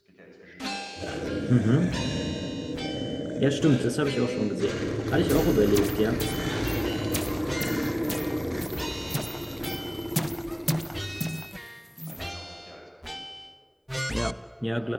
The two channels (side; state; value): both; identical; correlation 1.00